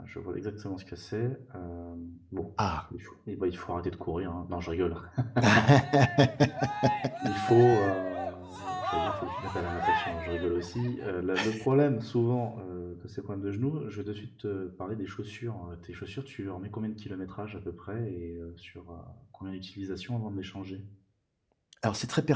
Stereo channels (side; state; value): both; identical; correlation 1.00